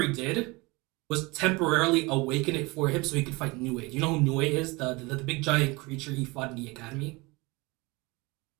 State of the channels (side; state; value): left; quieter; 24.8 dB